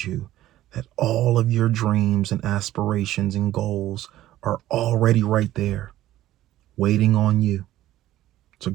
you that all of your dreams and aspirations and goals are already right there, waiting on you to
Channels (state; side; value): quieter; left; 14.3 dB